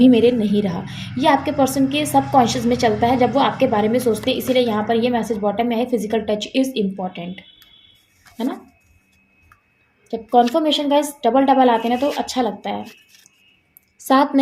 मेरे नहीं रहा। ये आपके पर्सन के सब कॉन्शियस में चलता है जब वो आपके बारे में सोचते हैं। इसीलिए यहाँ पर ये मैसेज बॉटम में है, फिजिकल टच इज़ इम्पॉर्टेंट, है ना। जब कॉन्फर्मेशन गाइस डबल डबल आते हैं ना तो अच्छा लगता है। साथ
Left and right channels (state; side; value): identical; both; correlation 1.00